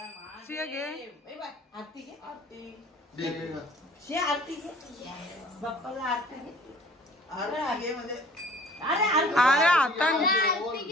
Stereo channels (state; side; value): normal; both; correlation 0.50